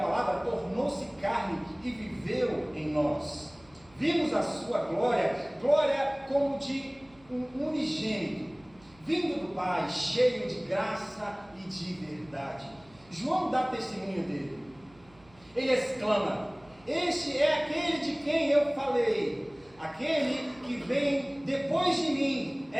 palavra tornou-se carne e viveu em nós. Vimos a sua glória, glória como de um unigênito, vindo do Pai, cheio de graça e de verdade. João dá testemunho dele. Ele exclama: este é aquele de quem eu falei. Aquele que vem depois de mim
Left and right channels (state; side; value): noise; right; hum, 28 dB below the sound